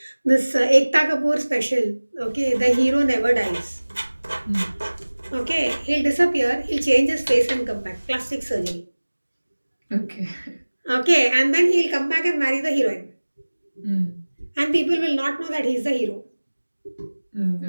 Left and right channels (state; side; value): inverted; both; correlation -1.00